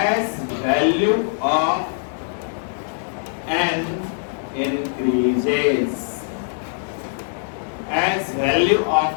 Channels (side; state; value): right; silent; digital silence